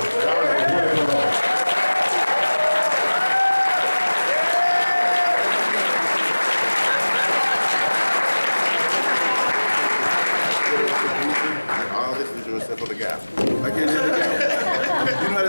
All this is yours except for the gap. I can't hear the gap. You know how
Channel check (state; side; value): inverted; both; correlation -1.00